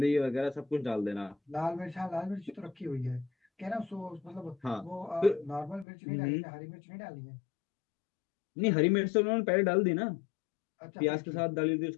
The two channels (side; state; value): right; drops out; at 5.9 s